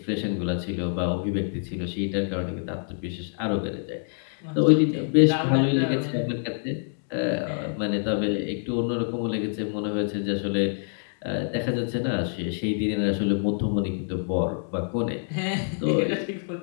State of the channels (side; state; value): right; silent; digital silence